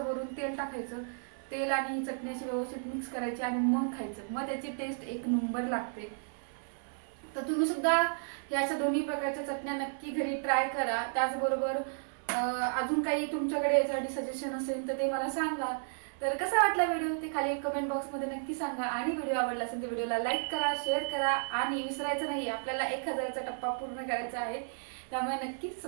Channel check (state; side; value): silent; left; 56 dB below the other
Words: वरून तेल टाकायचं. तेल आणि चटणी अशी व्यवस्थित मिक्स करायची आणि मग खायचं. मग त्याची टेस्ट एक नंबर लागते. तर तुम्ही सुद्धा या अशा दोन्ही प्रकारच्या चटण्या नक्की घरी ट्राय करा. त्याचबरोबर अजून काही तुमच्याकडे यासाठी सजेशन असेल तर ते मला सांगा. तर कसा वाटला व्हिडिओ ते खाली कमेंट बॉक्समध्ये नक्की सांगा. आणि व्हिडिओ आवडला असेल तर व्हिडिओला लाईक करा, शेअर करा आणि विसरायचं नाही आपल्याला 1000चा टप्पा पूर्ण करायचा आहे. त्यामुळे नक्की